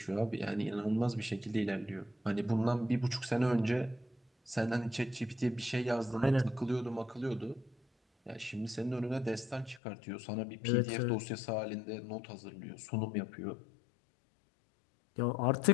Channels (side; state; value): right; drops out; at 9.8 s